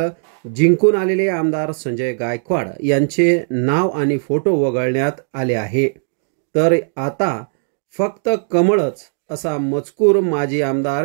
जिंकून आलेले आमदार संजय गायकवाड यांचे नाव आणि फोटो वगळण्यात आले आहे। तर आता फक्त कमळच असा मजकूर माजी आमदार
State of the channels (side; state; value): left; silent; digital silence